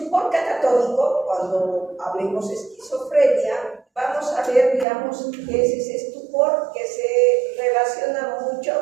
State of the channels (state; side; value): drops out; left; at 4.9 s